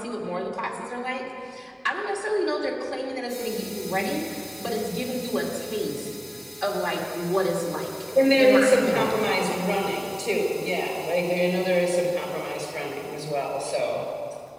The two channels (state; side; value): identical; both; correlation 1.00